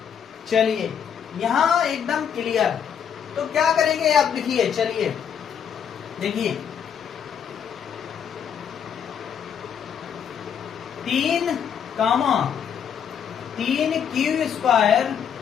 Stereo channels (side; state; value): right; quieter; 8.0 dB